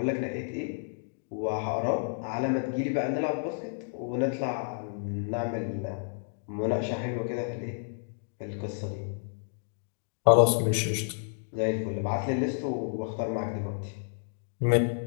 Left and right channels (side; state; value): right; silent; digital silence